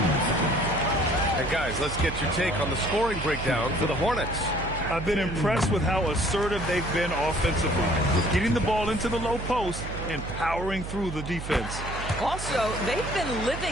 And guys, let's get your take on the scoring breakdown for the Hornets. I've been impressed with how assertive they've been offensively, getting the ball into the low post and powering through the defense. Also, they've been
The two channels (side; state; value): right; noise; hum, 8 dB below the sound